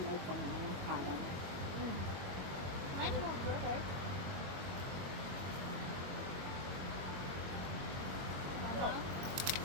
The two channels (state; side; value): late; left; 21 ms